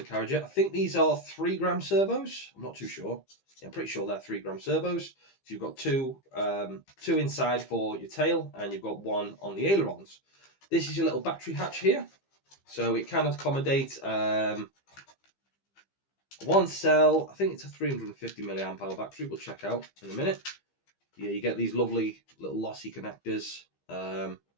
I think these are 3-gram servos. I'm not too sure. Yeah, I'm pretty sure they're 3-gram servos. So you've got two inside for your tail, and you've got 1 on the ailerons. This is your little battery hatch here. So it can accommodate 1 cell. I think it's a 350 milliamp hour battery. We'll check out in a minute. Yeah, you get these lovely little lossy connectors. And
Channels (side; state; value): right; late; 15 ms